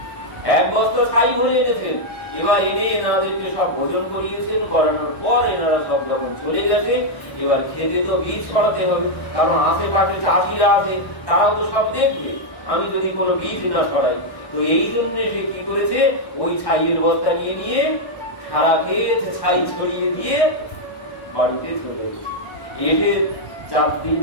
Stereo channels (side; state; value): right; late; 1.1 ms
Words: এক বস্তা ছাই ভরে এনেছেন। এবার এনে এনাদেরকে সব ভোজন করিয়েছেন, করানোর পর এনারা সব যখন চলে গেছে, এবার খেতে তো বীজ ছড়াতে হবে, কারণ আশেপাশে চাষিরা আছে, তারাও তো সব দেখবে আমি যদি কোনো বীজ না ছড়াই। তো এই জন্য সে কি করেছে, ওই ছাইয়ের বস্তা নিয়ে নিয়ে সারা ক্ষেত ছাই ছড়িয়ে দিয়ে বাড়িতে চলে গেছে। এসে 4 দিন